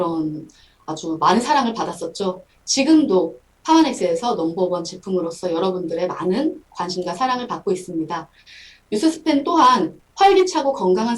아주 많은 사랑을 받았었죠. 지금도 파마넥스에서 넘버원 제품으로서 여러분들의 많은 관심과 사랑을 받고 있습니다. 뉴스스펜 또한 활기차고 건강한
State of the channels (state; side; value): identical; both; correlation 1.00